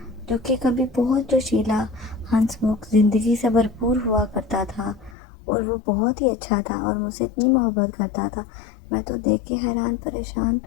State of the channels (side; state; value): right; drops out; at 5.2 s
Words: جو کہ کبھی بہت جوشیلا، ہنس مکھ، زندگی سے بھرپور ہوا کرتا تھا، اور وہ بہت ہی اچھا تھا اور مجھ سے اتنی محبت کرتا تھا۔ میں تو دیکھ کے حیران پریشان،